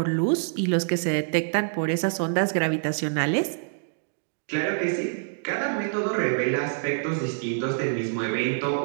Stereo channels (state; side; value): silent; left; digital silence